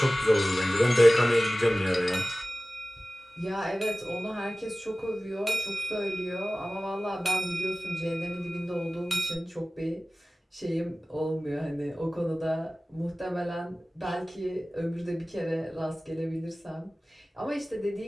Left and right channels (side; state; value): both; normal; correlation 0.96